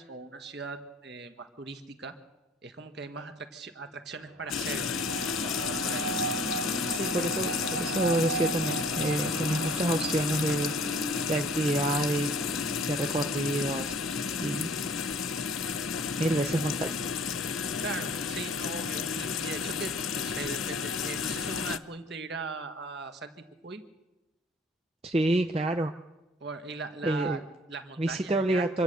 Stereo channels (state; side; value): normal; both; correlation 0.53